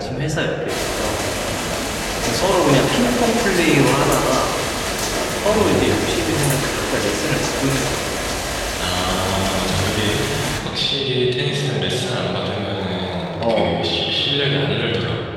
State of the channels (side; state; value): both; identical; correlation 1.00